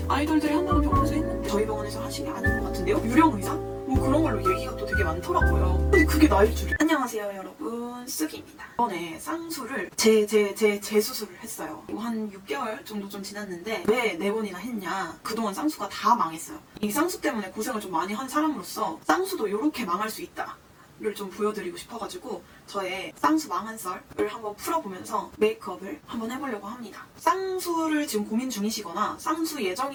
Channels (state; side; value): identical; both; correlation 1.00